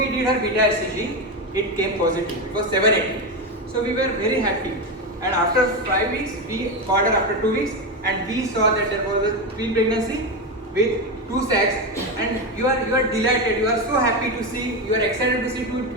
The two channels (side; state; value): both; normal; correlation 0.14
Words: did her beta HCG, it came positive, it was 780. So we were very happy, and after 5 weeks, we called her after 2 weeks and we saw that there was a twin pregnancy with 2 sacs, and you are delighted, you are so happy to see, you are excited to see 2